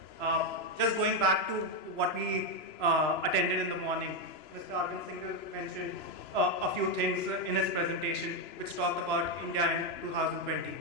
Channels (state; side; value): late; right; 3.0 ms